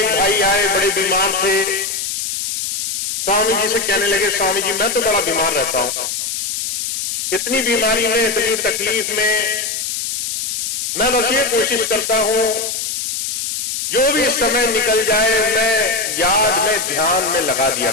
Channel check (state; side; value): noise; left; hiss, 2 dB below the sound